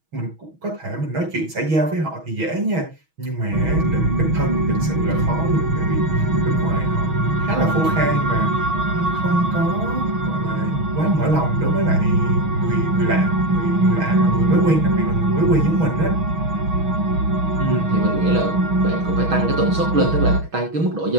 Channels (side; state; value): left; late; 6.3 ms